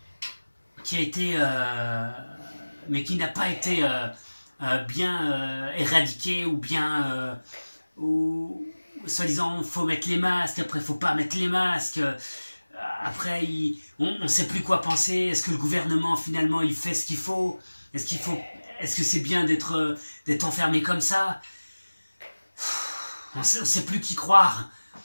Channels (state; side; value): inverted; both; correlation -1.00